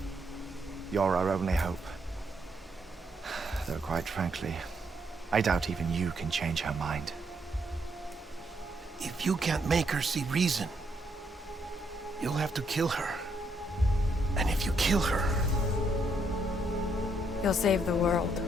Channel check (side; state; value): both; normal; correlation 0.75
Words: you're our only hope. Though quite frankly, I doubt even you can change her mind. If you can't make her see reason, you'll have to kill her. And if you kill her... You'll save the world,